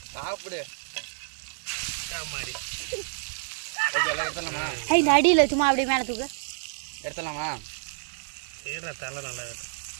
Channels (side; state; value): left; silent; 59 dB below the other